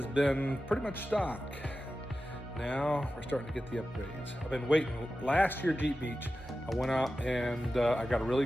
been pretty much stock. Now we're starting to get the upgrades. I've been waiting. Last year, Jeep Beach, I went out and I got a really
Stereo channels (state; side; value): normal; both; correlation 0.93